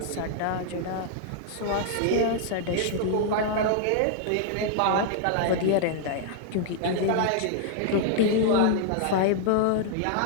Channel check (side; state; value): both; different; correlation -0.01